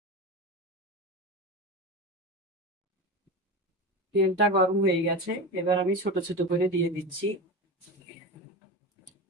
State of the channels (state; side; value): normal; both; correlation 0.24